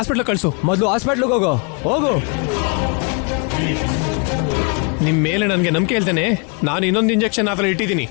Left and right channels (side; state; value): right; quieter; 35.5 dB